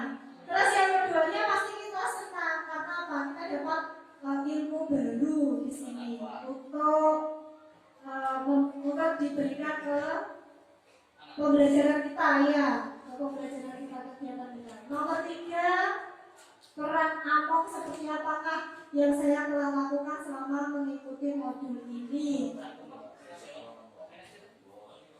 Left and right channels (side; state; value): both; identical; correlation 1.00